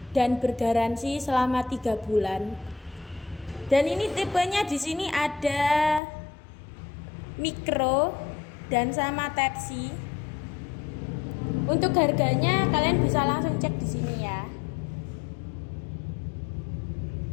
dan bergaransi selama 3 bulan. Dan ini tipenya di sini ada micro dan sama Type C. Untuk harganya kalian bisa langsung cek di sini ya.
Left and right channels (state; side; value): drops out; right; at 6.0 s